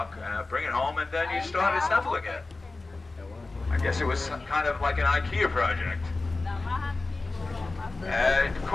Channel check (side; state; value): right; quieter; 3.4 dB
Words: bring it home, and then you start assembling it. I guess it was kind of like an IKEA project. It